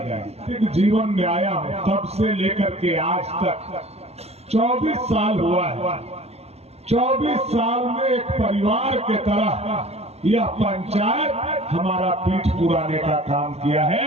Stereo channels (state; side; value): late; left; 0.30 ms